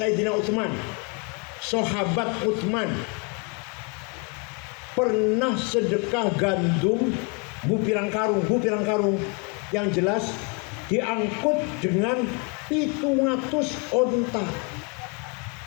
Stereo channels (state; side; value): quieter; right; 34.3 dB